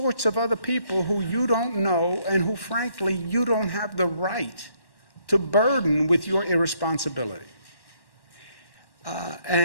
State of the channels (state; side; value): late; right; 1.1 ms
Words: of other people who you don't know and who, frankly, you don't have the right to burden with your irresponsibility.